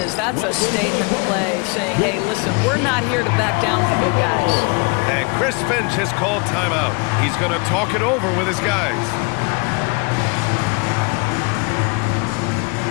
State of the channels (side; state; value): right; quieter; 31.6 dB